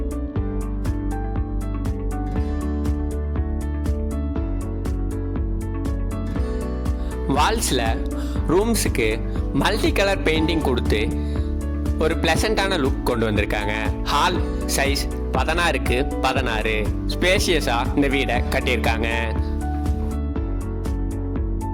வால்ஸில் ரூம்ஸுக்கு மல்டி கலர் பெயிண்டிங் கொடுத்து ஒரு பிளசண்டான லுக் கொண்டு வந்திருக்காங்க. ஹால் சைஸ் 16க்கு 16 ஸ்பேஷியஸாக இந்த வீடை கட்டியிருக்காங்க.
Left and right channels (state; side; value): identical; both; correlation 1.00